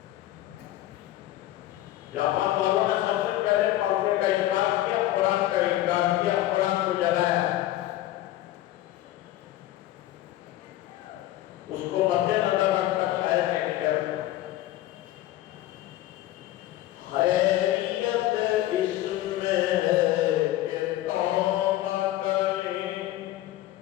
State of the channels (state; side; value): quieter; right; 14.7 dB